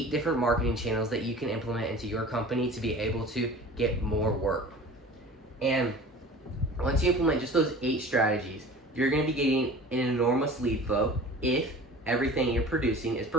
different marketing channels that you can implement into your company to be able to get more work. And once you implement just those 8 strategies, you're going to be getting an enormous lead flow if everything you're producing is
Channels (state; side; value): normal; both; correlation 0.41